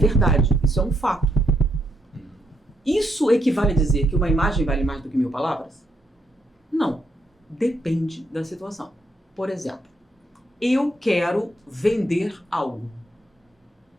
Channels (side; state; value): both; normal; correlation 0.77